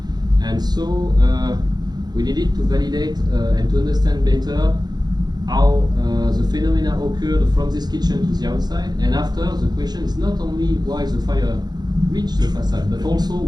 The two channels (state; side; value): late; left; 0.20 ms